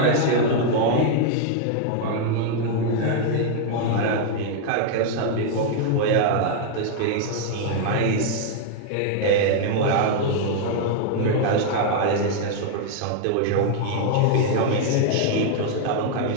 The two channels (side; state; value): both; different; correlation 0.00